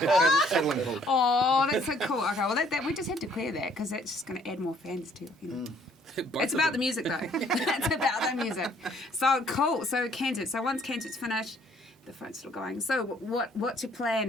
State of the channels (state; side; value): normal; both; correlation 0.62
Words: Oh, that's so cool. Okay, well, that we just had to clear that because that's just going to add more fans to it. It's about the music, though. It's about the music. So cool. So Kansas. So once Kansas finished, the phone's still going. So what's your